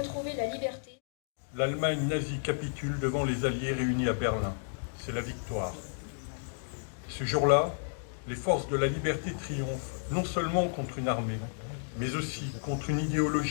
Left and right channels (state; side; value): silent; right; digital silence